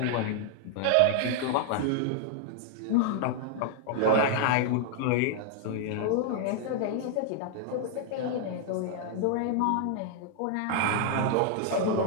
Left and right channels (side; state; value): both; different; correlation 0.00